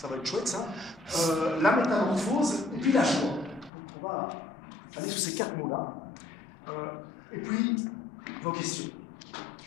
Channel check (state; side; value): drops out; right; at 3.7 s